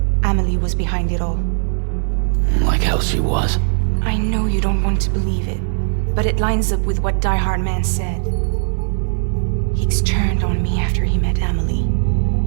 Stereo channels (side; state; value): left; silent; digital silence